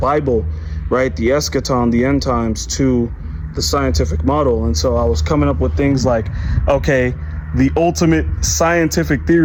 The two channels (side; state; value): both; identical; correlation 1.00